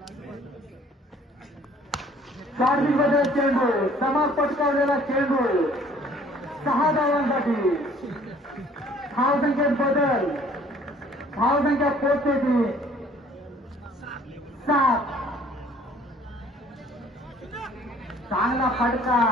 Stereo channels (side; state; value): both; normal; correlation 0.56